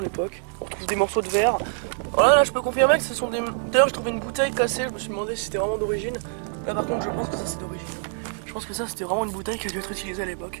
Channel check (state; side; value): silent; left; digital silence